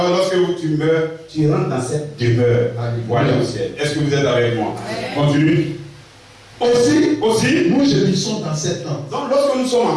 lorsque tu meurs, tu rentres dans cette demeure pour aller au ciel. Est-ce que vous êtes avec moi? Continue. Aussi, nous gémissons dans cette tente. Donc, lorsque nous sommes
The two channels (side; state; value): both; identical; correlation 1.00